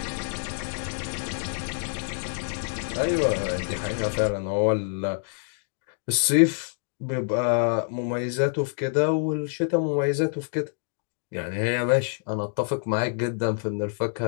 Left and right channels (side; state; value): right; silent; 60 dB below the other